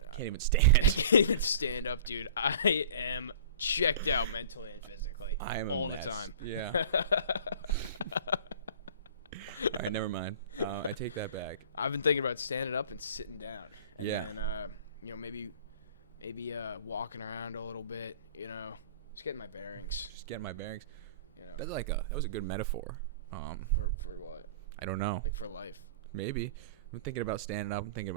even stand. I can't even stand up, dude. I am checked out mentally and physically. I am all a the mess. time. Yeah. All right, never mind. I take that back. I've been thinking about standing up and sitting down. And Yeah. then, maybe walking around a little bit, just getting my bearings. Just getting my bearings. That was a good metaphor. For what? I don't know. Like for life. Maybe. I'm thinking about standing up. I'm thinking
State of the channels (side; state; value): both; inverted; correlation -0.42